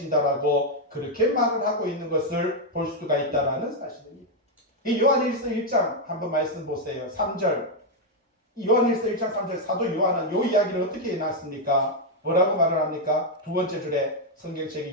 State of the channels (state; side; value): normal; both; correlation 0.01